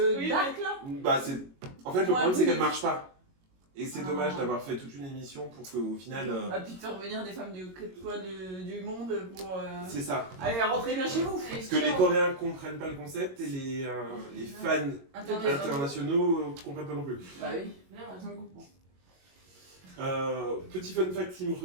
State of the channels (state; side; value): late; left; 22 ms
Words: Oui, dark, là. Bah, c'est... En fait, le Ouais, problème, c'est oui. qu'elle marche pas. Et c'est Ah. dommage d'avoir fait toute une émission pour qu'au final. Ah, puis de faire venir des femmes du monde pour C'est ça. aller rentrer bien chez vous. Parce que les Coréens comprennent pas le concept et les fans internationaux comprennent pas non plus. Bah oui, Bien, personne ne comprend. Petit fun fact qui me